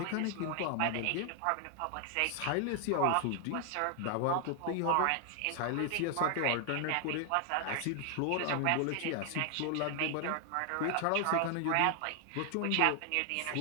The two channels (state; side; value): different; both; correlation 0.00